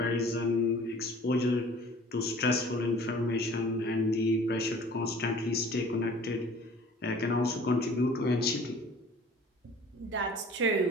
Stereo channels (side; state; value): both; normal; correlation 0.49